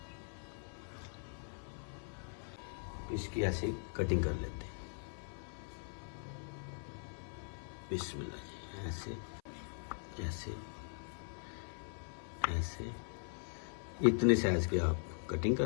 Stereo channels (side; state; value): right; silent; 51 dB below the other